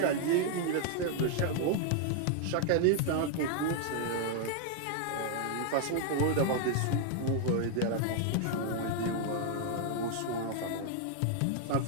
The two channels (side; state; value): both; different; correlation 0.00